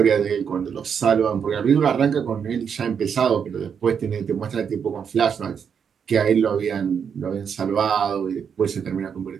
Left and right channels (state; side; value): quieter; left; 7.2 dB